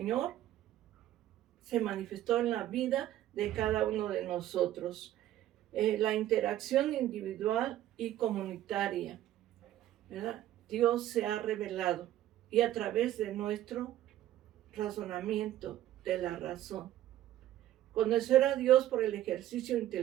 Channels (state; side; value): quieter; left; 13.1 dB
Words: se manifestó en la vida de cada uno de nosotros. La interacción individual y comunitaria, ¿verdad? Dios se ha revelado y a través de nuestro razonamiento de la razón. Conocer a Dios por el ejercicio